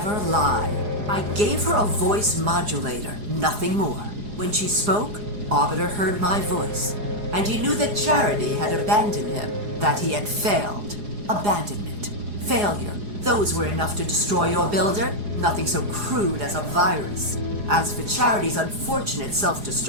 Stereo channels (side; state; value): left; late; 4.8 ms